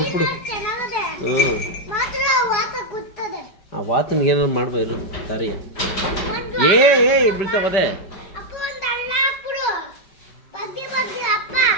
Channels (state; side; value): late; right; 5.2 ms